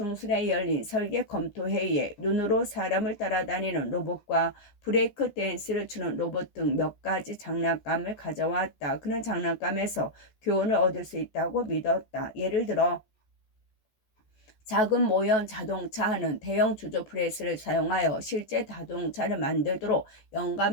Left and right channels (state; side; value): late; right; 14 ms